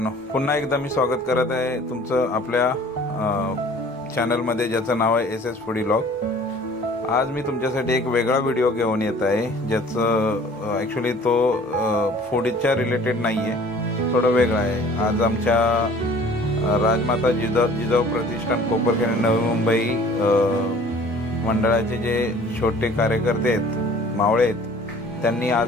पुन्हा एकदा मी स्वागत करत आहे तुमचं आपल्या चॅनलमध्ये ज्याचं नाव आहे एस एस फूडी व्लॉग। आज मी तुमच्यासाठी एक वेगळा व्हिडिओ घेऊन येत आहे, ज्याचं ॲक्च्युली तो फूडच्या रिलेटेड नाही आहे, थोडं वेगळं आहे। आज आमच्या राजमाता जिजाऊ प्रतिष्ठान कोपरखैरणे नवी मुंबई मंडळाचे जे छोटे कार्यकर्ते आहेत, मावळे आहेत, त्यांनी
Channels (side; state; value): both; normal; correlation 0.50